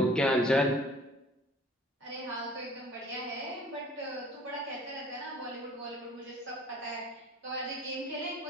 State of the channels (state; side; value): normal; both; correlation 0.51